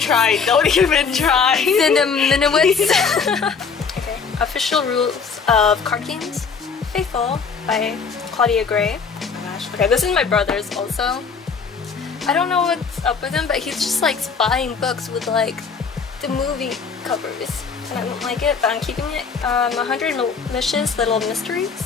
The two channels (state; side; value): quieter; right; 5.6 dB